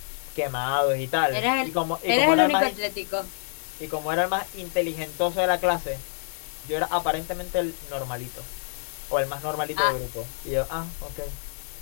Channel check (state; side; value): silent; right; digital silence